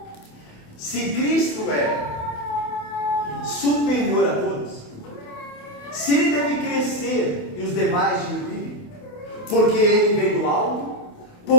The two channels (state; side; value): late; right; 28 ms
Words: Se Cristo é superior a todos, se Ele deve crescer e os demais diminuírem, porque Ele vem do alto,